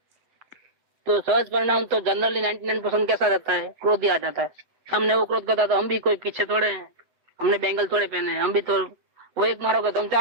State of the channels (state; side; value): late; left; 7.7 ms